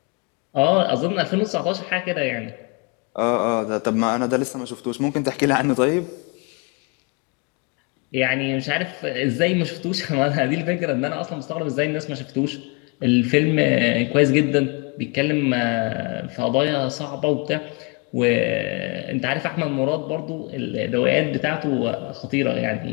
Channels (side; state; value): right; quieter; 30.4 dB